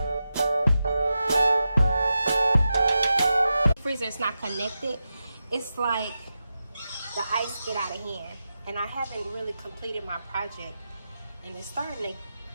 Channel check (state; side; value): inverted; both; correlation -0.90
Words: Freezer is not connected. It's like the ice get out of hand, and I haven't really completed my project, and it's starting to